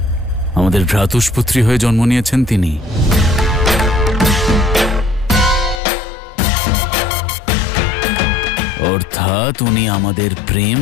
আমাদের ভ্রাতুষ্পুত্রী হয়ে জন্ম নিয়েছেন তিনি। অর্থাৎ উনি আমাদের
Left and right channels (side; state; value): right; drops out; at 5.8 s